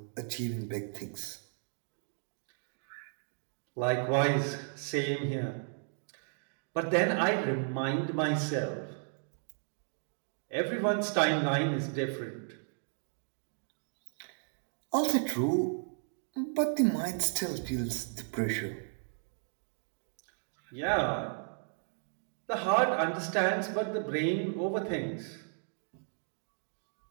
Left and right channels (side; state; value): left; silent; 55 dB below the other